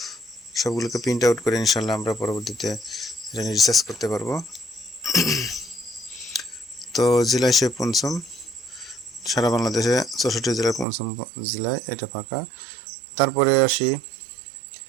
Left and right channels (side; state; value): left; drops out; at 10.9 s